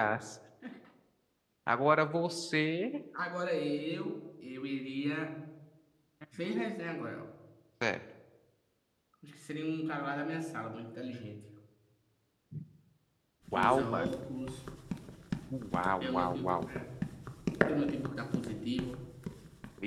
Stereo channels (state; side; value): identical; both; correlation 1.00